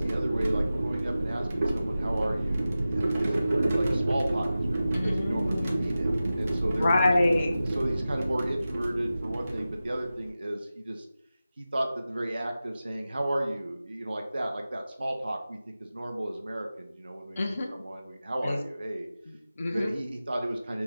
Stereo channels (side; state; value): both; inverted; correlation -0.95